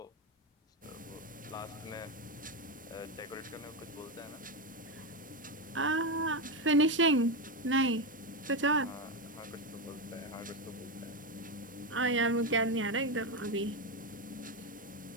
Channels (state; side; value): normal; both; correlation 0.10